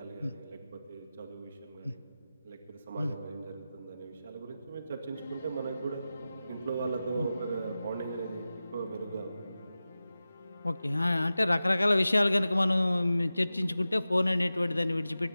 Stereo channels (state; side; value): inverted; both; correlation -0.94